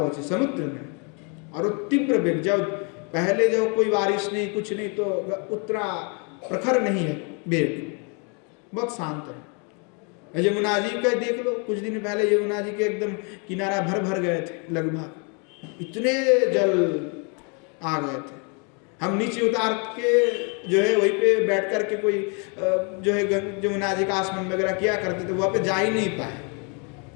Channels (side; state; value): right; quieter; 35.4 dB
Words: समुद्र में। और वो तीव्र वेग, जब पहले जब कोई बारिश नहीं कुछ नहीं तो उतना प्रखर नहीं है वेग, बहुत शांत है। यमुना जी का देख लो, कुछ दिन पहले यमुना जी के एकदम किनारा भर गए थे, लगभग इतने जल आ गए थे। हम नीचे उतार के जो है वहीं पे बैठ कर के कोई जो है यमुना जी का आसमान वगैरह किया करते थे, वहाँ पे जा ही नहीं पाए।